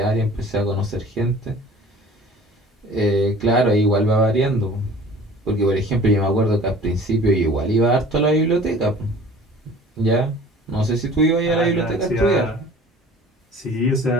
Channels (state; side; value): normal; both; correlation 0.47